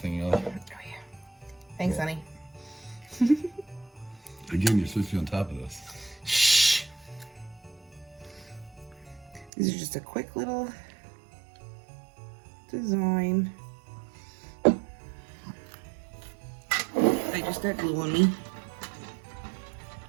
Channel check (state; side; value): drops out; left; at 9.5 s